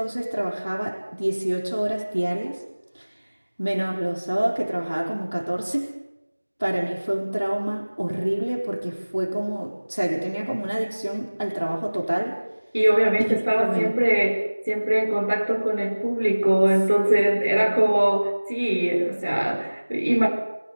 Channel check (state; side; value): inverted; both; correlation -1.00